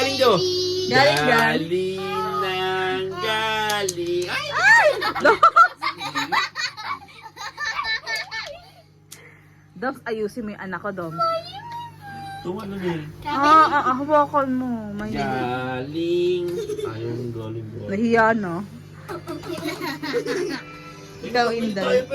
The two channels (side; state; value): both; identical; correlation 1.00